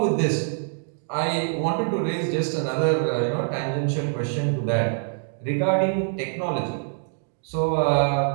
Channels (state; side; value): silent; left; digital silence